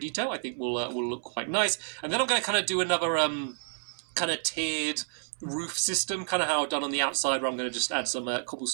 I think will look quite nice. And then I'm going to kind of do another kind of tiered roof system, kind of how I've done on the outside, where I'm going to just add some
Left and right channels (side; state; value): left; silent; 58 dB below the other